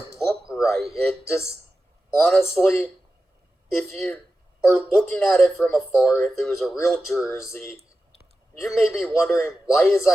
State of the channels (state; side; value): normal; both; correlation 0.93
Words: look right. It just, honestly, if you are looking at it from afar, if it was a real jersey, you may be wondering, why is